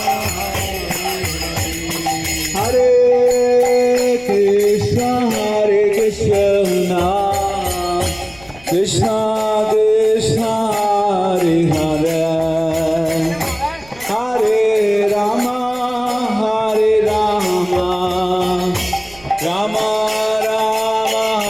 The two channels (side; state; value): right; noise; rumble, 25 dB below the sound